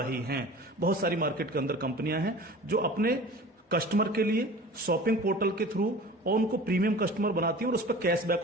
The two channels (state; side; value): normal; both; correlation 0.40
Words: हैं। बहुत सारी मार्केट के अंदर कंपनियां हैं जो अपने कस्टमर के लिए शॉपिंग पोर्टल के थ्रू और उनको प्रीमियम कस्टमर बनाती हैं और उस पर